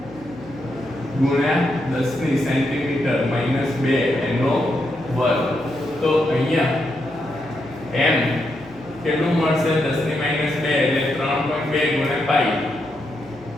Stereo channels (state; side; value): noise; left; hum, 25 dB below the sound